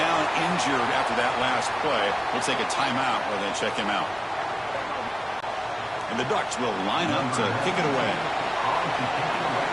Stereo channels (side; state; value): both; identical; correlation 1.00